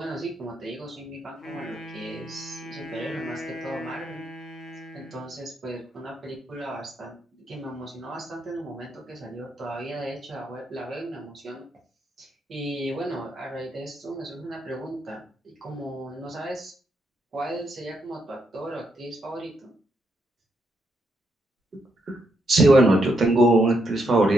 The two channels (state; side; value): normal; both; correlation 0.78